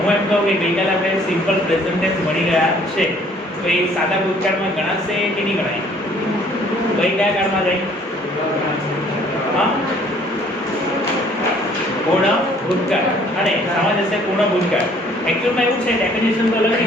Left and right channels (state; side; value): normal; both; correlation 0.58